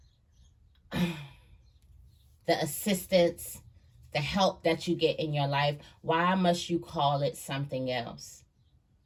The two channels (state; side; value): identical; both; correlation 1.00